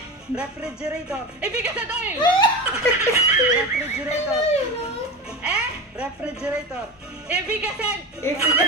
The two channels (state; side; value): normal; both; correlation 0.25